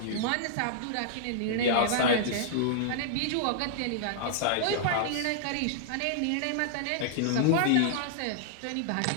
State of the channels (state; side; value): different; both; correlation -0.01